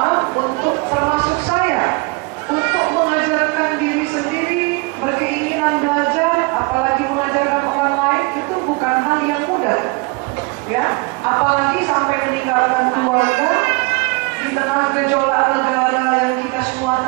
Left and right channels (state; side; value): quieter; left; 28.3 dB